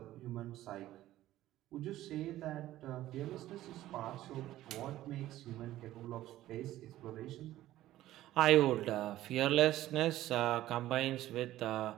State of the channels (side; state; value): left; quieter; 14.6 dB